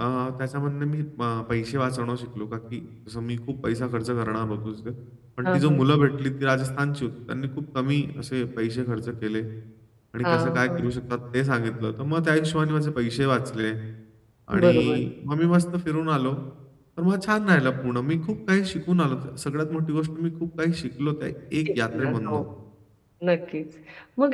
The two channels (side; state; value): both; identical; correlation 1.00